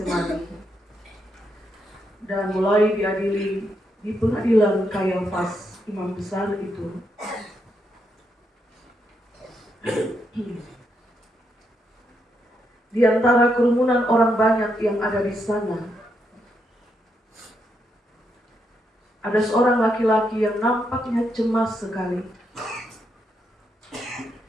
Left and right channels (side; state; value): both; normal; correlation 0.80